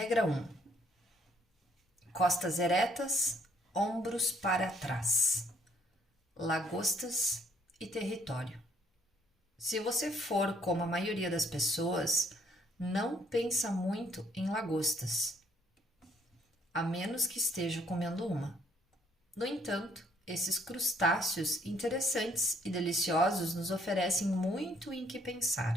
Regra 1. Costas eretas, ombros para trás. Lagostas e território. Se você for como a maioria das pessoas, não pensa muito em lagostas, a menos que esteja comendo uma. No entanto, esses crustáceos interessantes e deliciosos nos oferecem muito em que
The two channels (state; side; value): normal; both; correlation 0.67